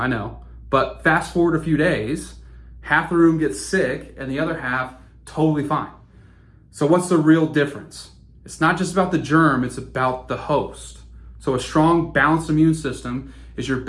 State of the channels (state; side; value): identical; both; correlation 1.00